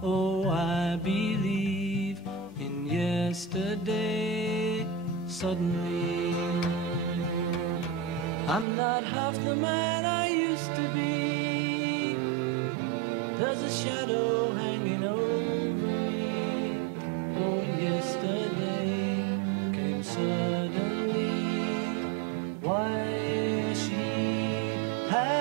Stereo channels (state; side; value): drops out; left; at 8.7 s